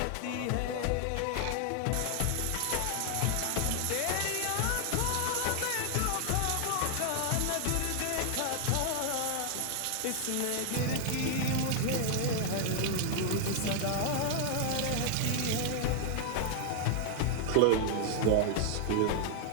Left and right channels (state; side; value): different; both; correlation 0.00